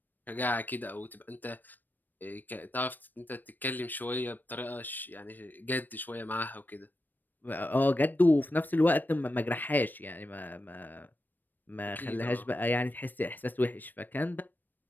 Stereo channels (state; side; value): late; right; 0.090 ms